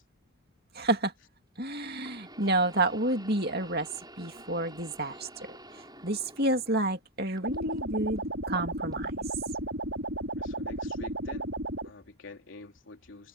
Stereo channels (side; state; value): both; normal; correlation 0.02